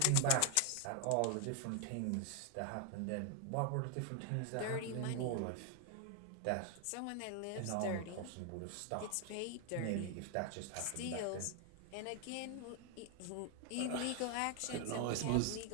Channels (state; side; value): different; both; correlation 0.00